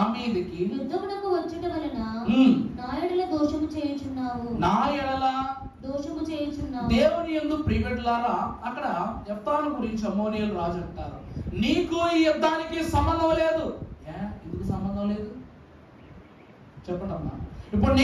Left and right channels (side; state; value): both; identical; correlation 1.00